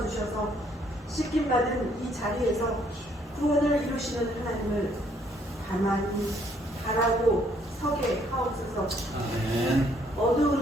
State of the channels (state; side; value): normal; both; correlation 0.66